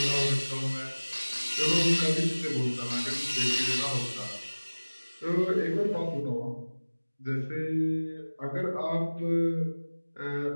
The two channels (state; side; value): inverted; both; correlation -1.00